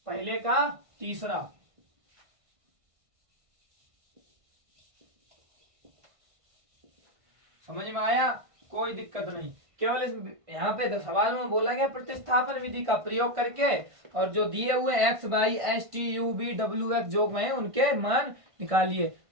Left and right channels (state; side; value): late; left; 1.5 ms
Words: पहले का तीसरा। समझ में आया, कोई दिक्कत नहीं। केवल इस यहाँ पे सवाल में बोला गया प्रतिस्थापन विधि का प्रयोग करके और जो दिए हुए X Y S T U B W X जो में उनके मान निकालिए।